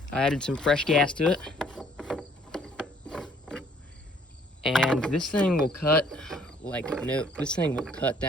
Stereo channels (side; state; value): both; normal; correlation 0.61